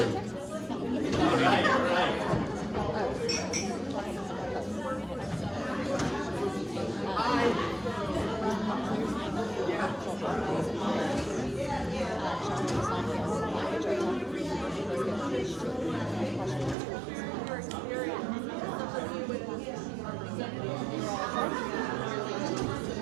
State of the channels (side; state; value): left; drops out; at 16.8 s